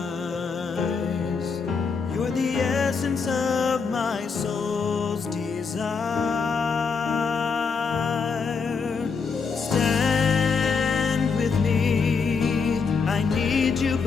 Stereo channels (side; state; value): right; quieter; 5.3 dB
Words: You're the essence of my soul's desire. Stand with me, I need you